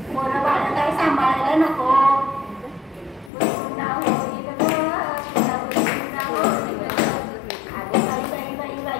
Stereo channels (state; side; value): drops out; right; at 3.3 s